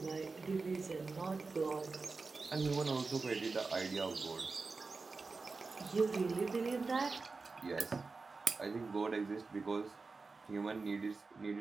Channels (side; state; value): left; quieter; 4.1 dB